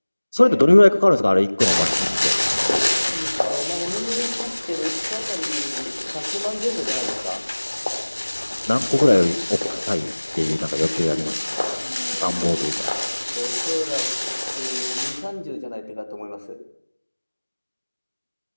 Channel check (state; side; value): inverted; both; correlation -1.00